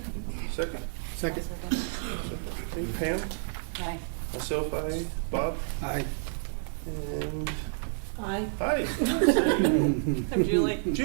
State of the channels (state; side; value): silent; left; 58 dB below the other